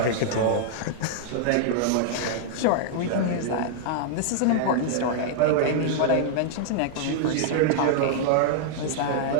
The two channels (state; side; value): different; both; correlation -0.01